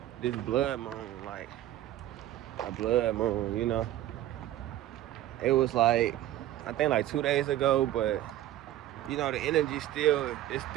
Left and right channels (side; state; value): left; quieter; 13.5 dB